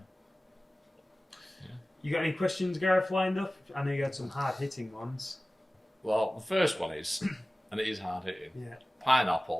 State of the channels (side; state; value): both; normal; correlation 0.97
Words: You got any questions, Gareth, lined up? I know you had some hard-hitting ones. Well, the first one is, and it is hard-hitting,